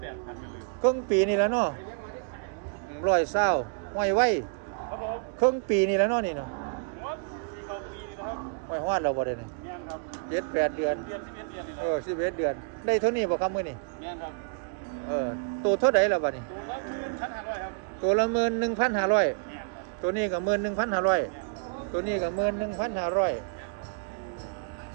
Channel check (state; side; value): quieter; left; 37.7 dB